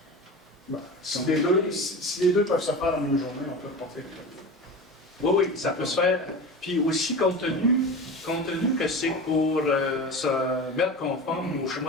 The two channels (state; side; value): normal; both; correlation 0.31